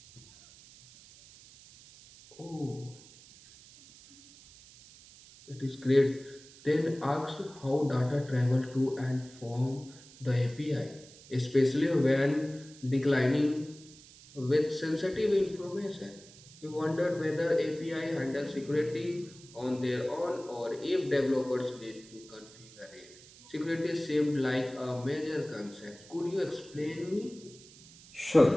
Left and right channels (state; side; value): noise; right; hiss, 21 dB below the sound